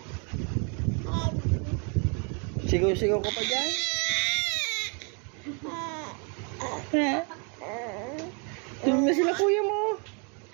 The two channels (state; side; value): quieter; left; 36.4 dB